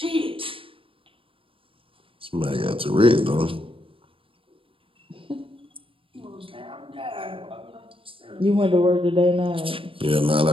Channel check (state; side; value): late; left; 0.26 ms